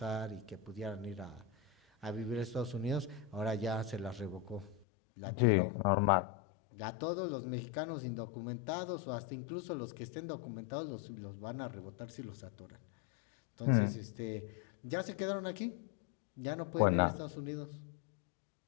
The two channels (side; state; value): right; drops out; at 4.9 s